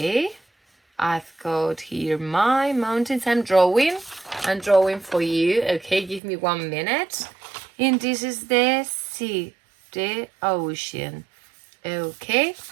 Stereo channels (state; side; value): drops out; left; at 6.2 s